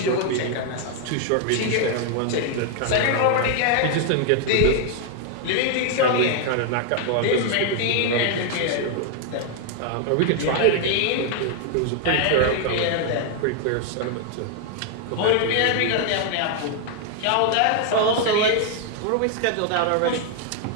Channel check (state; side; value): different; both; correlation 0.00